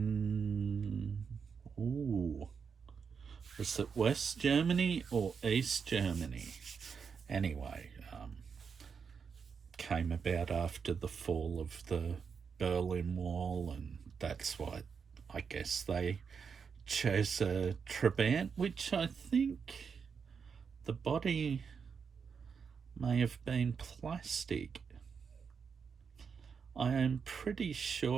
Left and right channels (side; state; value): left; quieter; 6.1 dB